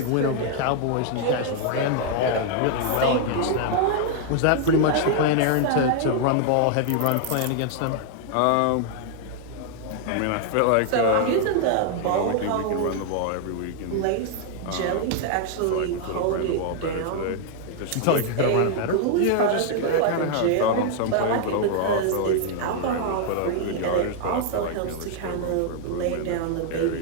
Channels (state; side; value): different; both; correlation 0.00